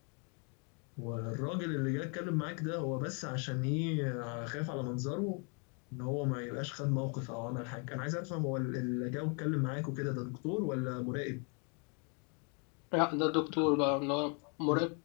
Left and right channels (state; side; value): quieter; right; 36.8 dB